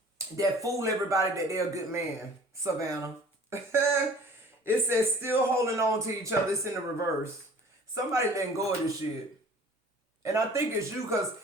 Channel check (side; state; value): both; normal; correlation 0.48